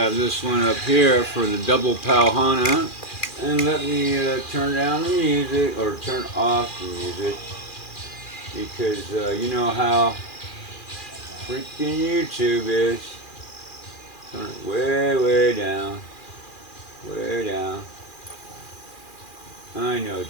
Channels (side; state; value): right; late; 2.4 ms